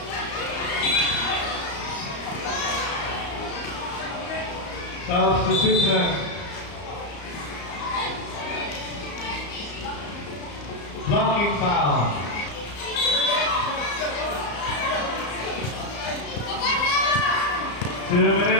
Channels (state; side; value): late; right; 34 ms